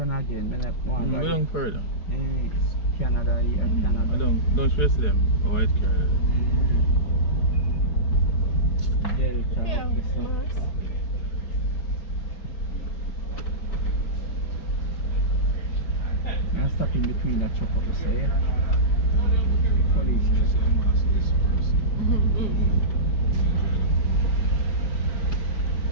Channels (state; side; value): late; right; 4.8 ms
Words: again? Then I want We don't further. Canada, Canada. I don't stress them. White car. Delta, Yeah, this one. Mars. I'm stuck in between that truck up there. Police.